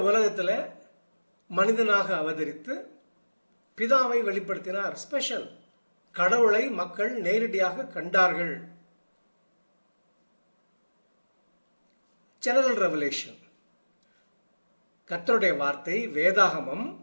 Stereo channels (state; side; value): inverted; both; correlation -1.00